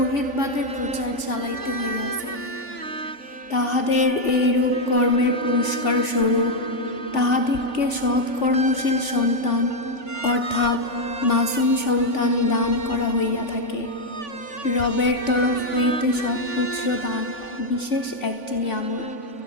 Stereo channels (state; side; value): late; right; 3.5 ms